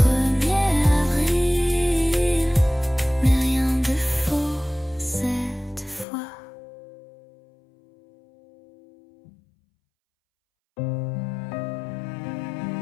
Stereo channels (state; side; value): drops out; right; at 6.1 s